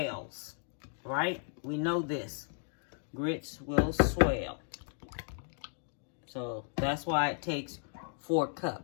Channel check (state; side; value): silent; right; 55 dB below the other